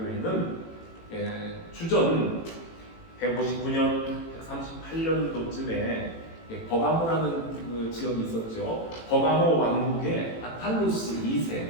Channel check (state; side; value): late; right; 18 ms